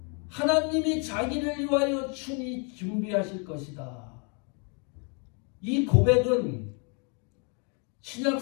하나님이 자기를 위하여 친히 준비하실 것이다. 이 고백은 신약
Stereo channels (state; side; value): quieter; right; 37.1 dB